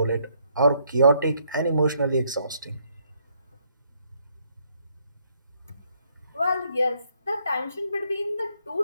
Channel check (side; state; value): both; inverted; correlation -0.70